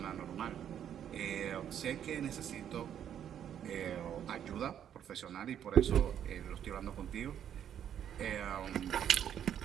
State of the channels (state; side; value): quieter; left; 9.6 dB